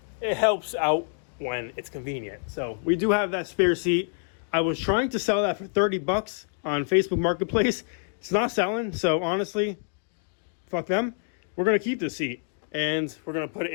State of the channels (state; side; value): silent; right; 60 dB below the other